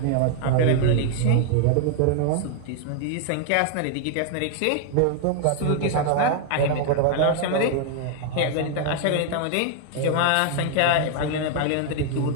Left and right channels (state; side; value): different; both; correlation 0.00